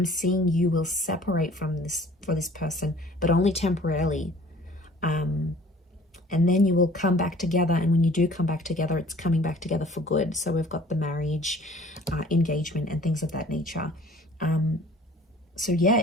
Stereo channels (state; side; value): normal; both; correlation 0.51